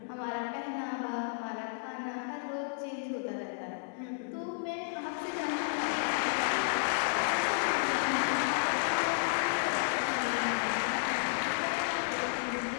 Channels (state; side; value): silent; right; digital silence